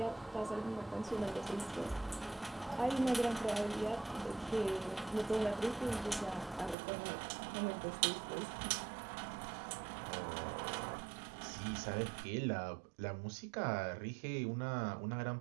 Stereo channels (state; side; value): drops out; left; at 6.8 s